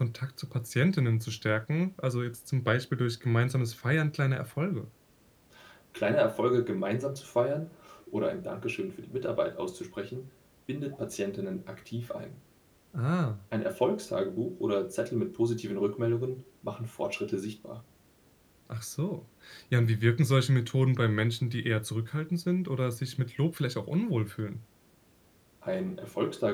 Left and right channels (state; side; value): identical; both; correlation 1.00